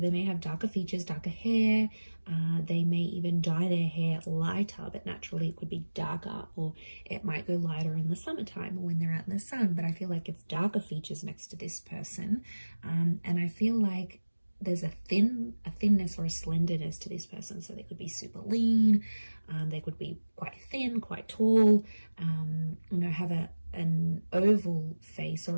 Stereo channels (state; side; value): inverted; both; correlation -1.00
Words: they may have darker features, darker hair. They may even dye their hair lighter, but naturally it could be darker, or it might go lighter in the summertime or when they're out in the sun. But I feel like it's darker features next to this person. And I feel like there's a thinness or a slenderness to this person. So they could be super lean. They could be quite thin, quite tall, have an oval face